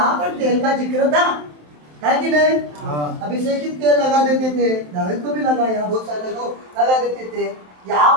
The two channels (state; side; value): late; left; 27 ms